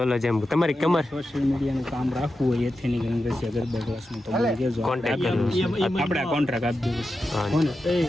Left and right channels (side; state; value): both; normal; correlation 0.90